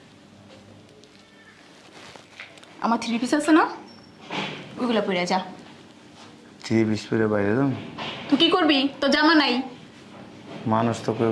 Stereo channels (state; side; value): identical; both; correlation 1.00